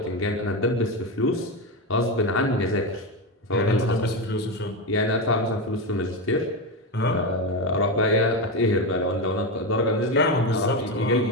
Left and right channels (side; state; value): both; normal; correlation 0.13